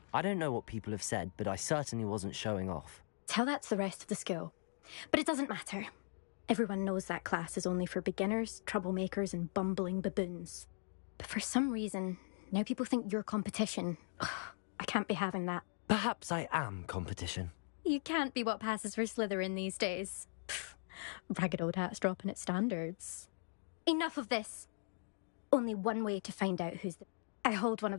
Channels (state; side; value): silent; right; digital silence